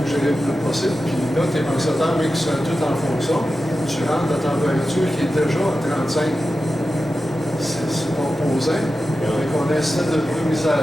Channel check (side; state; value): both; normal; correlation 0.92